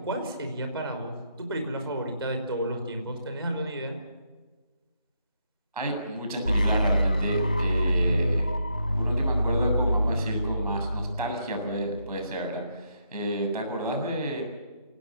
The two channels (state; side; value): inverted; both; correlation -0.76